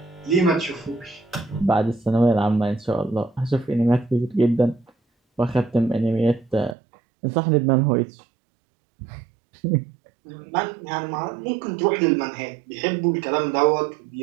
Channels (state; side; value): drops out; left; at 6.8 s